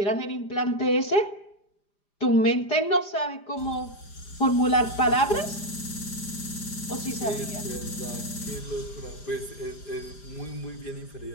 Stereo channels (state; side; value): late; right; 5.0 ms